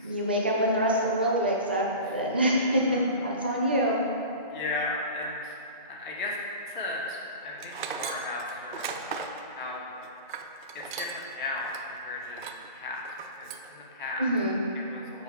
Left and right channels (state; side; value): inverted; both; correlation -0.34